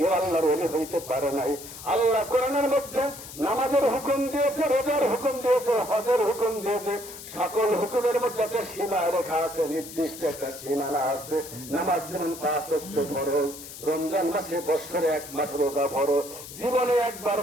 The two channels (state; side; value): noise; left; hiss, 13 dB below the sound